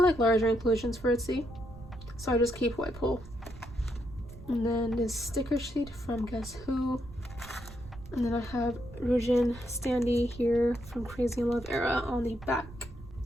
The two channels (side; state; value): right; noise; rumble, 17 dB below the sound